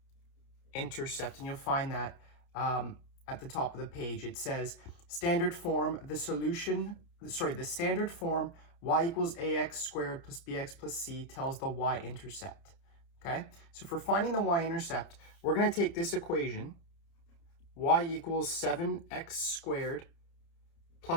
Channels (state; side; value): late; right; 30 ms